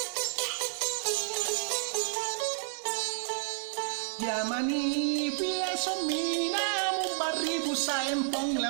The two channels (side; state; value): left; silent; digital silence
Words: Yamani via somina mubaribu sa empong la